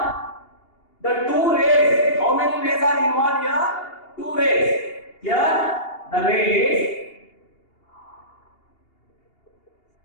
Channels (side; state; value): right; late; 2.8 ms